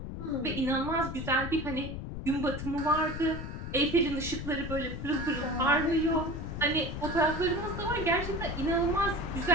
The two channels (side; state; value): left; noise; rumble, 7 dB below the sound